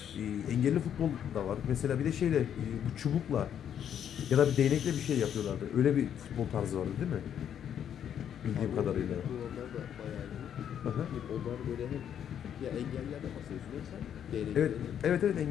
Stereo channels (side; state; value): right; quieter; 9.2 dB